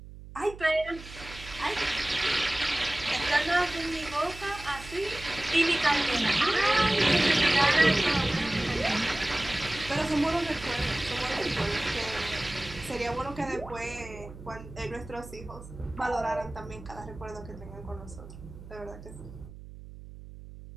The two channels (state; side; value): noise; right; hum, 15 dB below the sound